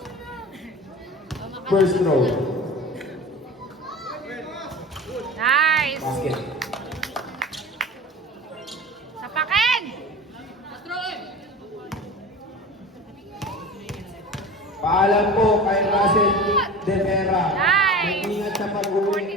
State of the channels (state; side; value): normal; both; correlation 0.36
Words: First throw. Nice! Basket. Sapakin! Paalam po kay Russell De Vera. Nice! Mag-ingat sa